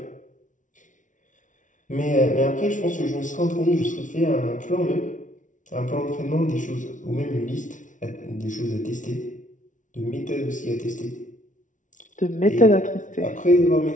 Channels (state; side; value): late; right; 0.37 ms